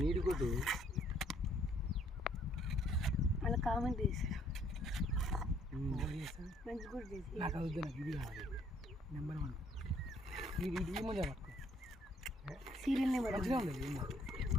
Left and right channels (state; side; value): normal; both; correlation 0.64